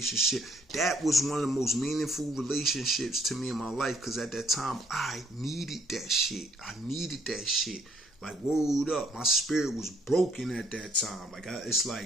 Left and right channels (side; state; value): both; normal; correlation 0.64